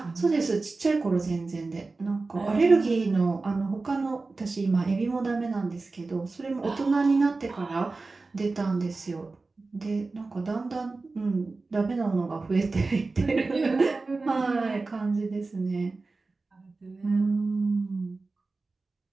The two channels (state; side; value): quieter; left; 3.7 dB